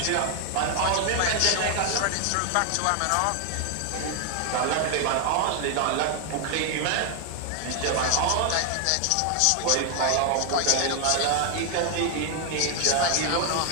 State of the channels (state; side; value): different; both; correlation 0.00